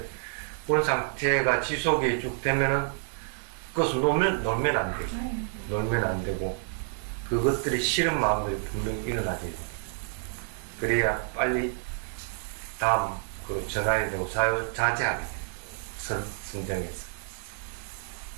본 상태가 지속이 쭉 되면은 그것을 놀면 안 되죠. 놀면 안 되고 그것들이 싫은 마음들이 분명히 일어나게 됩니다. 그래야 빨리 다음 그 전환이 되고 자제하게 돼요. 선정해서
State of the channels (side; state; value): left; silent; 59 dB below the other